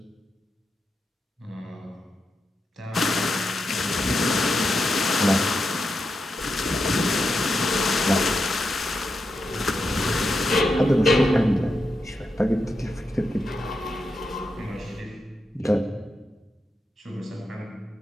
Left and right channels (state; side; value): normal; both; correlation 0.86